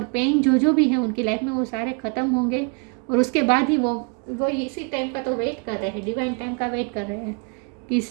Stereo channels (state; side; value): quieter; left; 35.9 dB